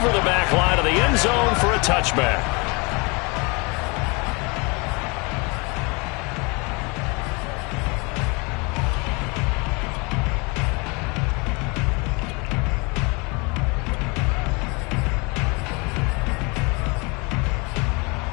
the back line of the end zone for a touchback.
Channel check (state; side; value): quieter; right; 29.2 dB